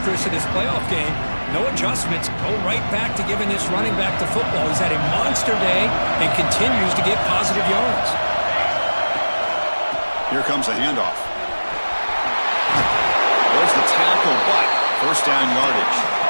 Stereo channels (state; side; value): inverted; both; correlation -1.00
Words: Chris, in this playoff game, no adjustments, go right back to giving this running back to football. He's had a monster day and continues to get positive yards. Here comes a handoff. There's the tackle, but 1st down yardage.